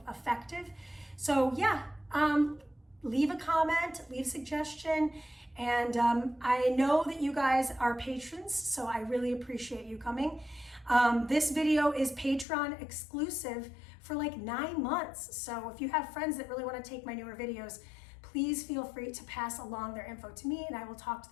effective. So yeah, leave a comment, leave a suggestion, and I know that you guys are patrons, so I really appreciate you coming. This video is Patreon exclusive for like 9 months. So if you have friends that really want to take my newer videos, please feel free to pass along their info to me and I will talk to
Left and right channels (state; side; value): drops out; right; at 12.5 s